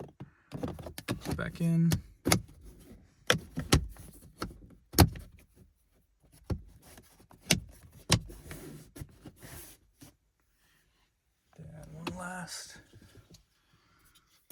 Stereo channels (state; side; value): identical; both; correlation 1.00